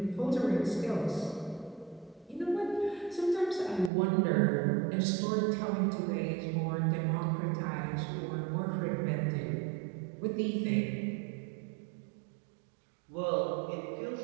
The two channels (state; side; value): drops out; left; at 3.9 s